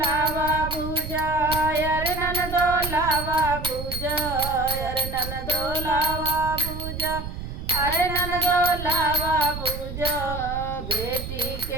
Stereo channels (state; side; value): noise; right; rumble, 8 dB below the sound